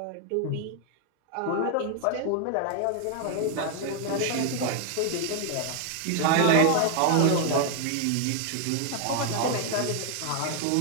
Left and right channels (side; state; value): both; different; correlation 0.00